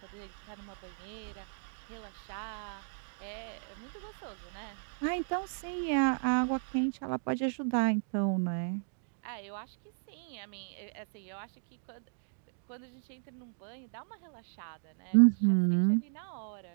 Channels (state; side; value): silent; left; digital silence